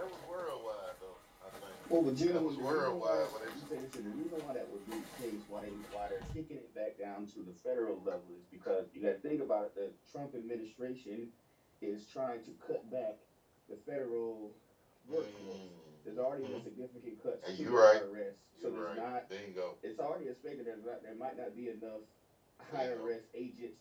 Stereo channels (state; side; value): identical; both; correlation 1.00